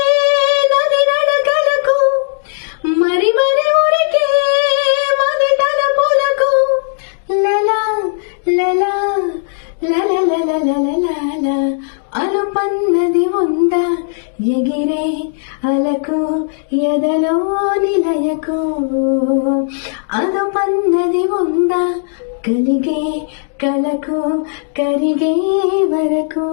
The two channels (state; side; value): silent; right; digital silence